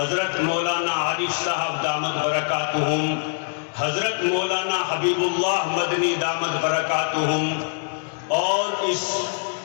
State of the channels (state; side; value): silent; right; digital silence